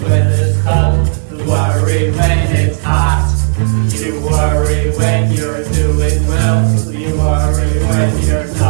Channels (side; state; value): left; silent; digital silence